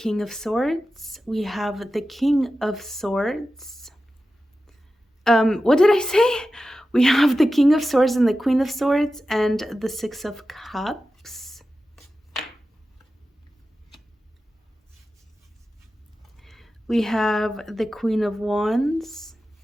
of Swords. We have the King of Swords. What did I say? We have the King of Swords and the Queen of Swords and the Six of Cups. We have the Queen of Wands,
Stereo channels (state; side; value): normal; both; correlation 0.93